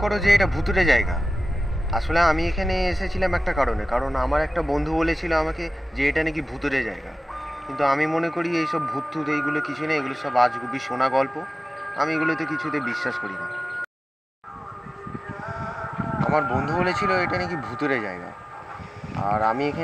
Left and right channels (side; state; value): both; normal; correlation 0.96